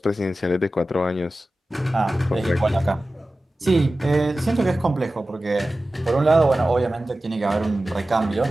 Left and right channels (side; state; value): both; normal; correlation 0.95